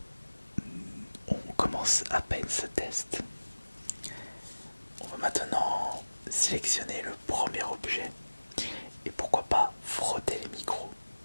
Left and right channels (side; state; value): both; inverted; correlation -1.00